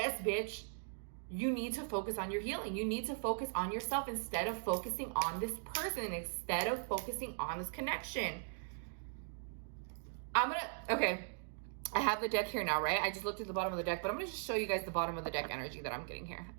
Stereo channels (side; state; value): left; silent; digital silence